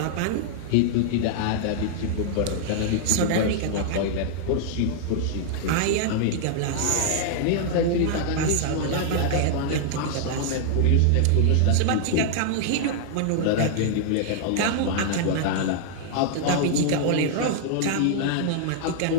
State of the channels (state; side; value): different; both; correlation -0.01